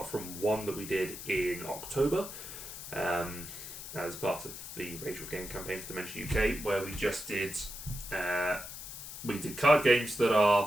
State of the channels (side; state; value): left; noise; hiss, 10 dB below the sound